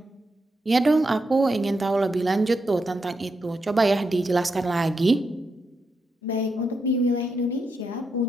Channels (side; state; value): both; normal; correlation 0.84